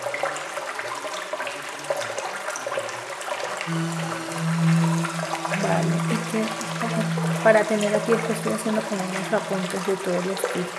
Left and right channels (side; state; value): both; identical; correlation 1.00